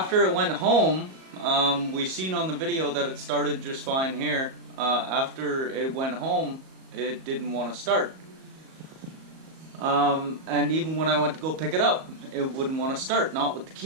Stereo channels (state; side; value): late; left; 38 ms